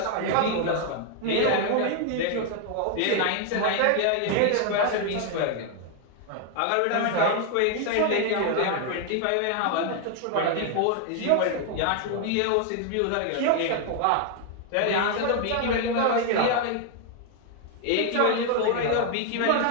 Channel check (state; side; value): different; both; correlation 0.00